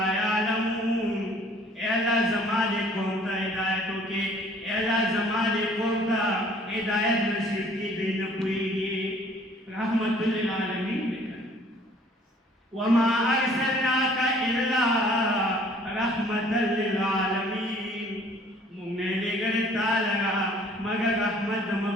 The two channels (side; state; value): both; normal; correlation 0.56